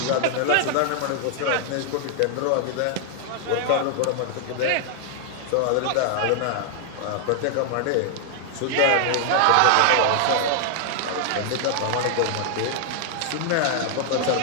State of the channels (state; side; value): different; both; correlation 0.00